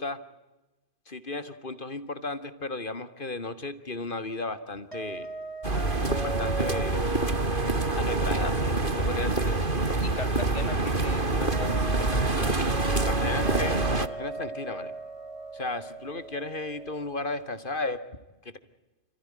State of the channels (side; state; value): right; late; 2.5 ms